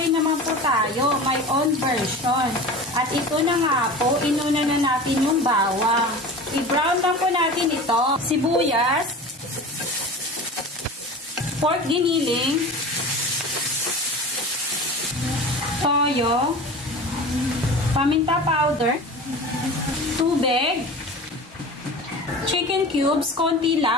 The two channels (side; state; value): both; normal; correlation 0.34